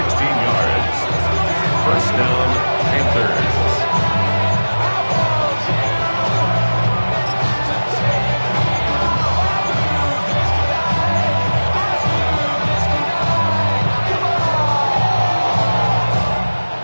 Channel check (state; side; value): inverted; both; correlation -1.00